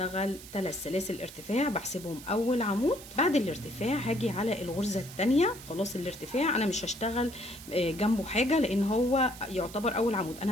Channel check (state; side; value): noise; right; hiss, 16 dB below the sound